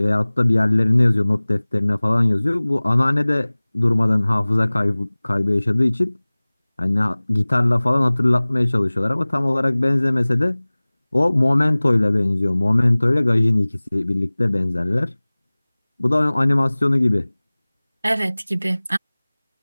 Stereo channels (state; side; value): inverted; both; correlation -1.00